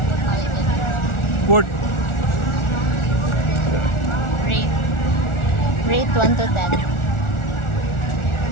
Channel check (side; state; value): right; late; 1.4 ms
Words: Good. Rate 1 to 10.